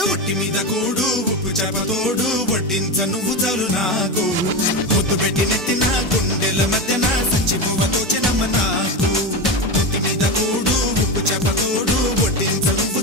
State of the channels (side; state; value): both; normal; correlation 0.18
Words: ఒంటి మీద కూడు ఉప్పు చేపతోడు వడ్డించ నువ్వు చాలు నాకు పొద్దు పెట్టి నెత్తిన గుండెల మధ్యన సంచిపోవతో చిన్నమ్మ నాకు ఒంటి మీద కూడు ఉప్పు చేపతోడు వడ్డించ నువ్వు